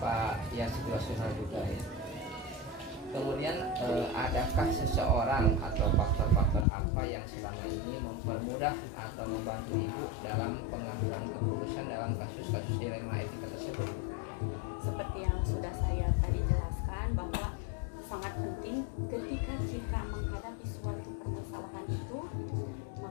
ya, situasional juga ya. Kemudian adakah seseorang atau faktor-faktor apa yang selama ini mempermudah atau membantu ibu dalam pengambilan keputusan dalam kasus-kasus dilema etika tersebut? Seperti yang sudah saya tadi jelaskan bahwa sangat penting ketika kita menghadapi suatu permasalahan itu,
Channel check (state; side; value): drops out; right; at 6.7 s